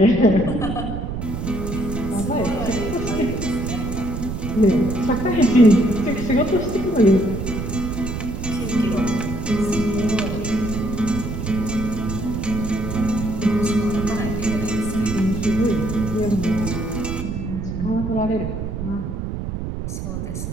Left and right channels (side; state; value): right; noise; rumble, 5 dB below the sound